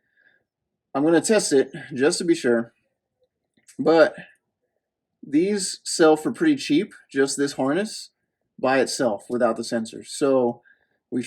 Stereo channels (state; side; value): identical; both; correlation 1.00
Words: I'm going to test it just to be sure, but these sell for pretty cheap, just this harness by itself without the sensors. So we